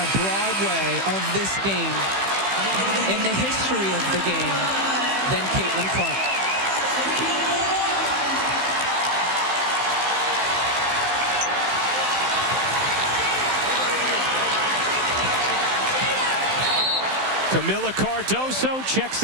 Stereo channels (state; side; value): late; left; 15 ms